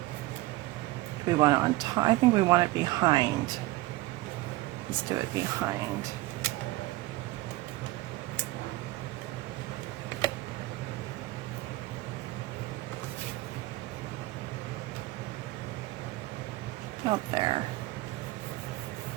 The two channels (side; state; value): left; quieter; 18.4 dB